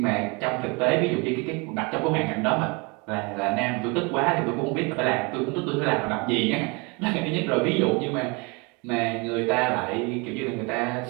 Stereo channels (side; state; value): left; quieter; 29.3 dB